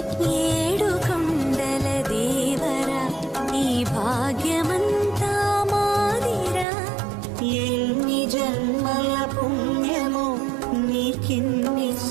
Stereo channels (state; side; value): drops out; left; at 6.7 s